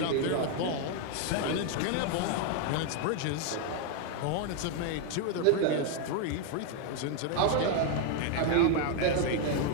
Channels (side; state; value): both; different; correlation 0.00